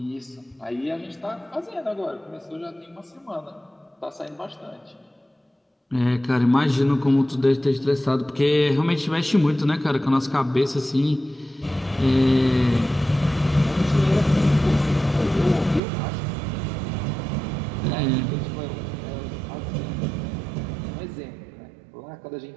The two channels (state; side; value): drops out; left; at 15.8 s